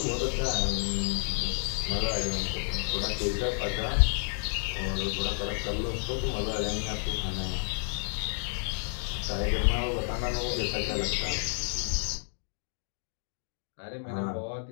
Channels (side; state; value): right; silent; digital silence